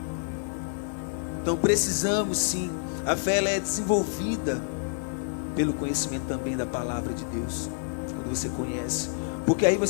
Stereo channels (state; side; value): silent; right; 59 dB below the other